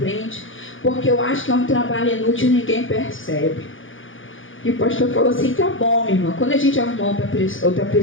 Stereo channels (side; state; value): right; late; 0.57 ms